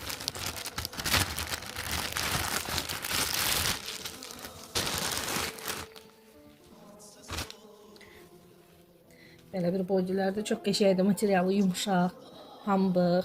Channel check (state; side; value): identical; both; correlation 1.00